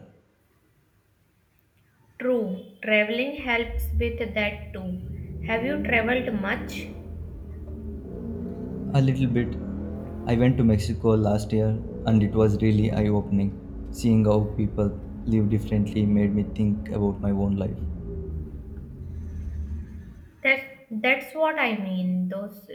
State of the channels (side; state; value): both; identical; correlation 1.00